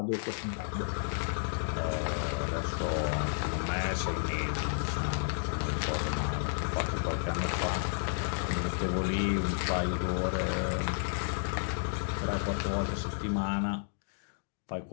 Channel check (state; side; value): silent; right; digital silence